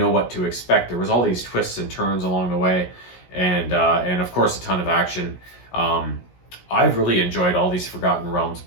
what to expect. There was all these twists and turns along the way, and of course a ton of action. I've really enjoyed all these Forgotten Realms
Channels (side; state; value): right; late; 17 ms